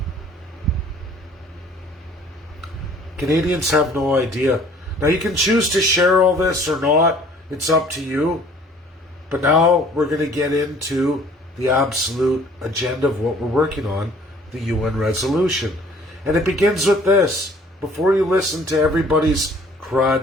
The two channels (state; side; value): normal; both; correlation 0.54